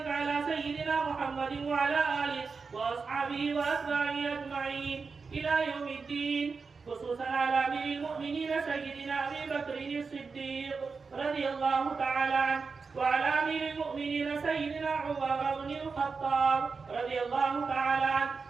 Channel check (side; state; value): left; quieter; 4.8 dB